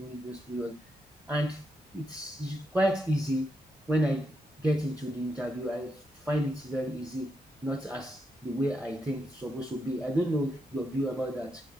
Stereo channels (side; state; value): both; normal; correlation 0.83